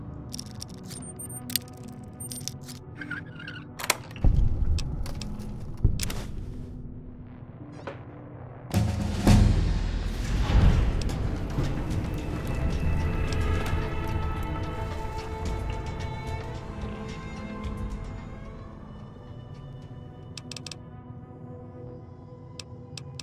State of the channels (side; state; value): both; identical; correlation 1.00